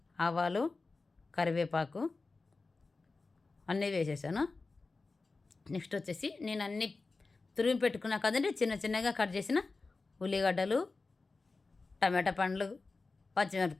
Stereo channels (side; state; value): right; quieter; 3.8 dB